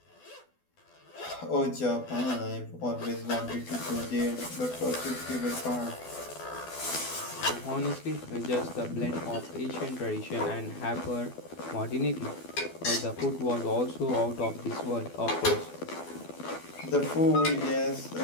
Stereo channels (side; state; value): right; late; 12 ms